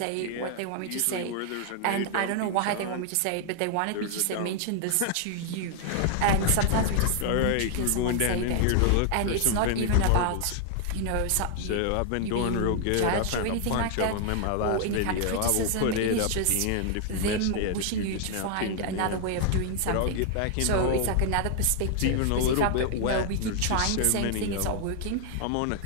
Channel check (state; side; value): different; both; correlation 0.00